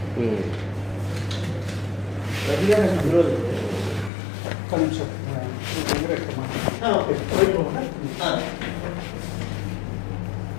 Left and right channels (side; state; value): right; drops out; at 4.1 s